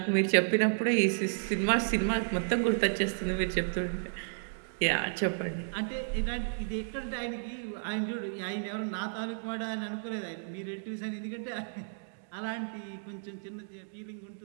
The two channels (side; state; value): left; silent; digital silence